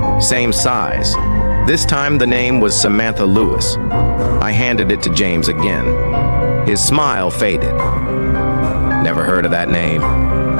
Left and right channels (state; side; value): inverted; both; correlation -1.00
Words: same size. This time the name was Samantha Lewis. I handed it to James again. His smile faded. "Never heard of that name.